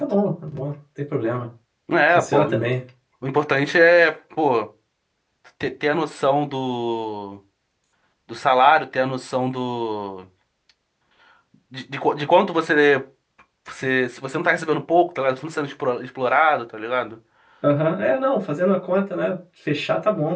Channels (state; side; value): identical; both; correlation 1.00